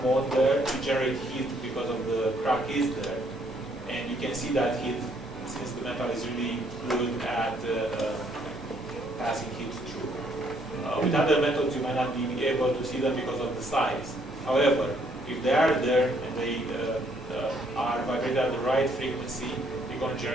mode there, you generate heat because of the crack is there. And you can see that heat, since the metal is really good at passing heat through. With other methods, you might not be able to see them because of the size. However, if they are there and they are vibrated at the right frequency, you're going to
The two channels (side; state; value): both; normal; correlation 0.68